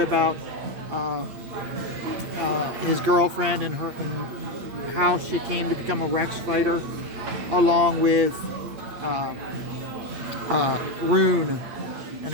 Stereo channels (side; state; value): left; late; 8.5 ms